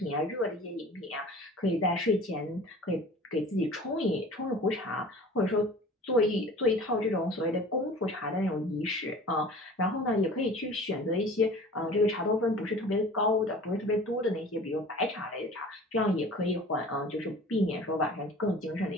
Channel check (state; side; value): normal; both; correlation 0.43